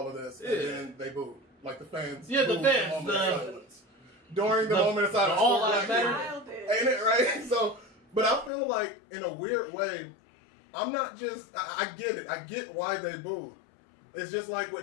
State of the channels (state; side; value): drops out; right; at 8.5 s